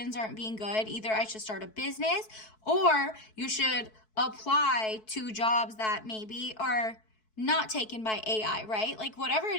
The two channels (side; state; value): right; late; 4.6 ms